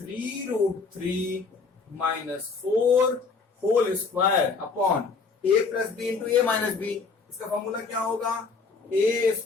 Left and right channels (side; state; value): right; quieter; 4.6 dB